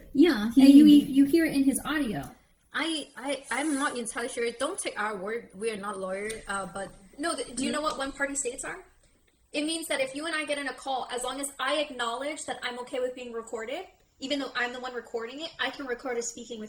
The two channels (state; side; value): identical; both; correlation 1.00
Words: Yeah. And you hear it in his audio. I'm not entirely sure. Don't take our word. We are not lawyers. But no, do you know what one-party states are? It means that if you and I get in a call, as long as I acknowledge that I'm okay with being recorded, even though I'm the one recording it, I can record us speaking